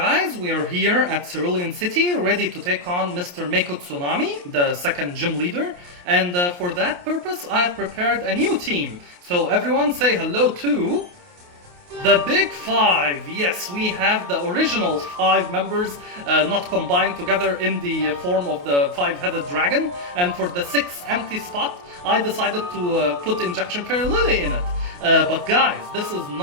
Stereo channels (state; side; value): late; left; 28 ms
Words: we are here at Cerulean City, ready to take on Mr. Mako Tsunami, the second gym leader. And for that purpose, I have prepared a new team. So everyone say hello to... the Big Five! Yes, we have the original 5 members not combined together in the form of the 5-headed dragon. And for the 6th empty spot, I decided to put Injection Fairy Lily in it. But guys, this is